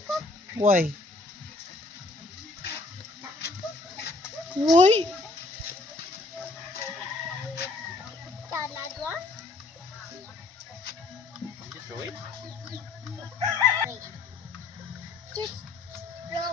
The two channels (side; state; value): right; quieter; 3.2 dB